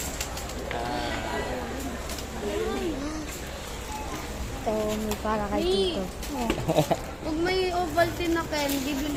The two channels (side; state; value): both; identical; correlation 1.00